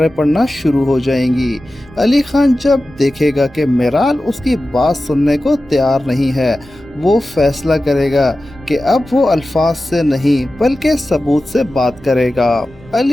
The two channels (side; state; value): both; normal; correlation 0.94